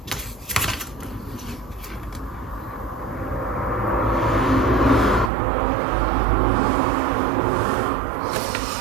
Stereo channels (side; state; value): left; drops out; at 5.3 s